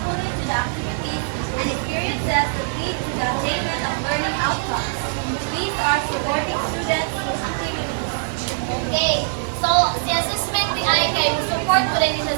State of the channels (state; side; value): silent; left; digital silence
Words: to the activities and experiences that lead to the attainment of learning outcomes. These are supporting students' activities. Okay. So, si assessment di ay kay support ko rin siya